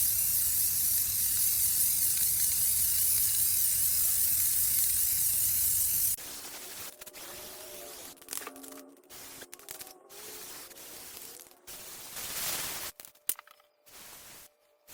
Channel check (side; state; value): both; identical; correlation 1.00